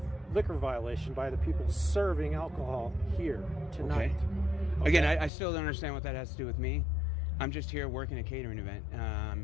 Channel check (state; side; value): drops out; right; at 5.3 s